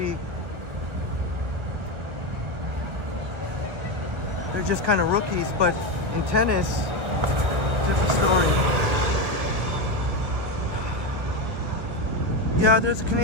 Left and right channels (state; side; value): late; left; 1.6 ms